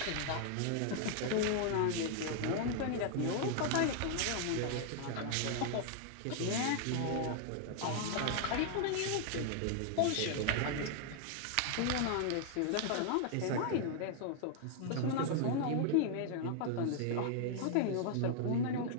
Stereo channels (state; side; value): different; both; correlation 0.00